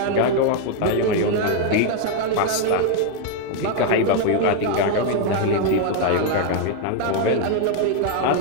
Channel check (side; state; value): both; different; correlation 0.00